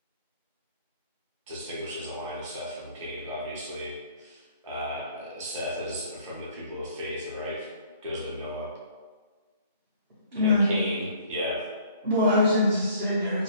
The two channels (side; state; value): both; inverted; correlation -0.56